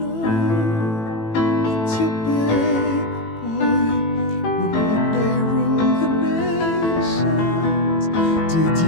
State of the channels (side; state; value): right; late; 18 ms